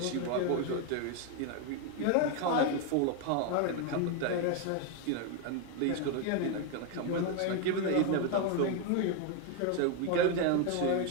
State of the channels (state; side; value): different; both; correlation 0.01